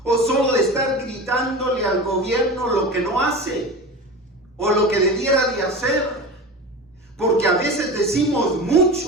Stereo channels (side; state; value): both; normal; correlation 0.30